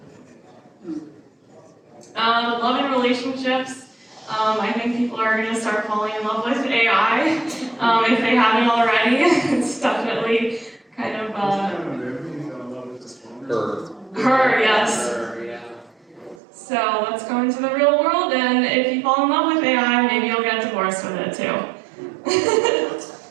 Love and relationships. I think people are going to start falling in love with AI if they haven't already. It's definitely kind of her, yes. Her, yeah. So let's go into the real world, and if you fall in love with AI, maybe you'll get divorced with it too.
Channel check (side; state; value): left; drops out; at 16.4 s